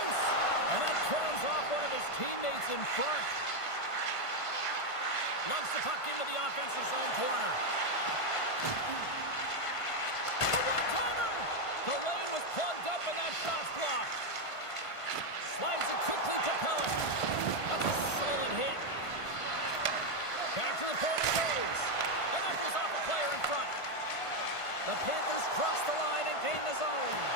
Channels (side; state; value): right; late; 1.5 ms